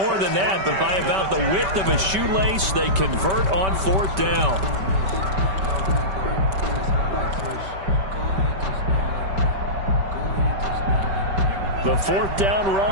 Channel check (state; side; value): late; left; 5.2 ms